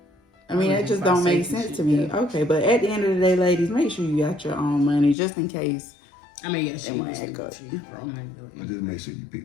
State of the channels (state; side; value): drops out; right; at 5.2 s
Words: I mean, that just don't make sense to me. Okay, but at the end of the day, ladies, make sure you got your own money just in case. I mean, yes, you just make sure you